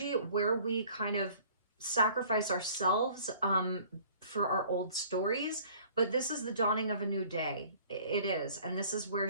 where we kind of sacrifice ourselves for our old stories. But this is the dawning of a new day. It is. And this is where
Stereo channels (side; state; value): both; inverted; correlation -0.52